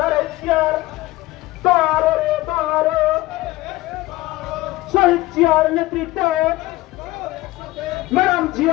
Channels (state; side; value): quieter; right; 18.4 dB